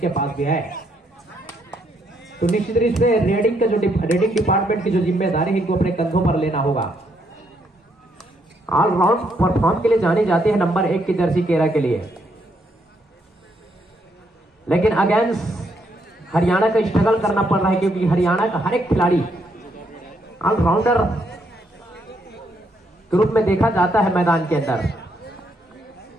पास भी है। तो निश्चित रूप से रेडिंग का जो रेडिंग डिपार्टमेंट की जो जिम्मेदारी है इनको अपने कंधों पर लेना होगा। ऑलराउंड परफॉर्म के लिए जानी जाती है नंबर 1 की जर्सी केरा के लिए, लेकिन अगेंस्ट हरियाणा का स्ट्रगल करना पड़ रहा है, क्योंकि हरियाणा का हर एक खिलाड़ी ऑलराउंडर के रूप में देखा जाता है मैदान के अंदर।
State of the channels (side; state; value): both; normal; correlation 0.74